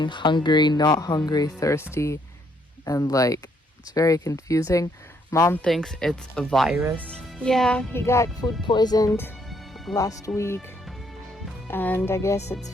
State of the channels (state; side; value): normal; both; correlation 0.70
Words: hungry, not hungry, thirsty, and like it's very confusing. Mom thinks it's a virus. Yeah, he got food poisoned last week, and I guess it's